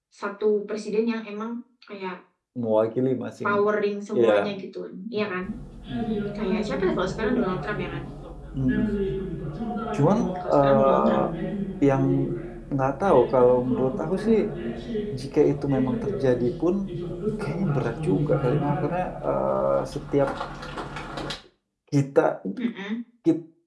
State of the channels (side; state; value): both; identical; correlation 1.00